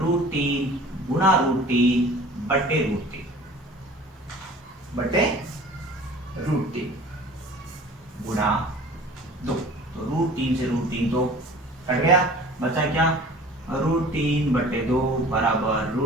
गुना √3 बटे √3 गुना 2, तो √3 से √3 तो कट गया, बचा क्या √3/2 बराबर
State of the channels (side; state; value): both; normal; correlation 0.44